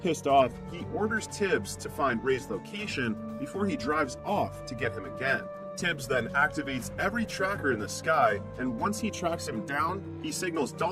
Pissed off, he orders Tibbs to find Ray's location before he drives off to get him again. Tibbs then activates every tracker in the sky, and once he tracks him down, he signals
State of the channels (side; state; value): both; identical; correlation 1.00